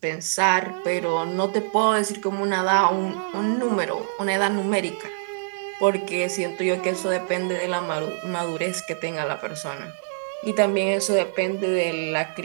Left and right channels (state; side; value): silent; left; digital silence